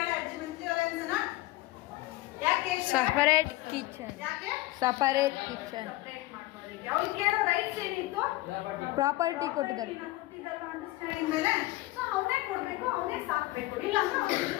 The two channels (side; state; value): right; quieter; 18.7 dB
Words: ಅಜ್ಜಿ ಮಂತ್ಲಿ ಅಲೋಯನ್ಸ್ ಅನ್ನ? ಯಾಕೆ ಹೇಳ್ತಿದ್ದಾಳೆ? Separate kitchen. ಯಾಕೆ ಸಪರೇಟ್ ಕಿಚನ್. ಸಪ್ರೇಟ್ ಮಾಡ್ಕೊಳ್ಳೋರಿಗೆ ಅವ್ರಿಗೆ ಕೇಳೋ ರೈಟ್ಸ್ ಏನಿತ್ತು? ಪ್ರಾಪರ್ಟಿ ಕೊಟ್ಟಿದ್ದಾರೆ. ಅಂಡರ್ಸ್ಟ್ಯಾಂಡಿಂಗ್ ಮೇಲೆ ಸೊ ಅವನೇ ಕೊಡಬೇಕು, ಅವನೇ ಸಾಕಬೇಕು, ಇಲ್ಲ ಅಂದ್ರೆ ಅವ್ನಿಗೆ